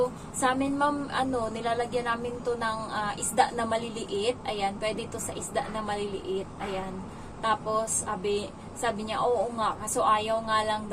sa amin ma'am, nilalagyan namin to ng isda na maliliit. Ayan, pwede to sa isda na maliliit. Ayan. Tapos, sabi niya, oo nga. Kaso ayaw nga lang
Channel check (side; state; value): both; identical; correlation 1.00